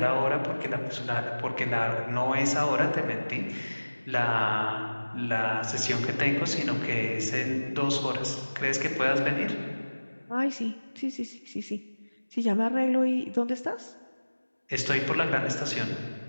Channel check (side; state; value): both; inverted; correlation -1.00